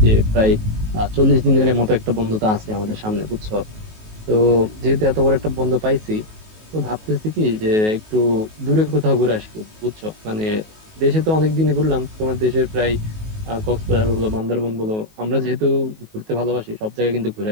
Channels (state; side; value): late; left; 19 ms